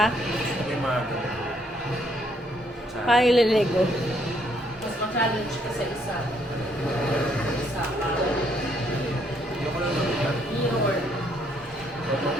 Actually, maaga. Paano ililego? Mas ma-challenge ka sa isa. Isa pa. Hindi ko lang nabigat. Your.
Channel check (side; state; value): both; normal; correlation 0.70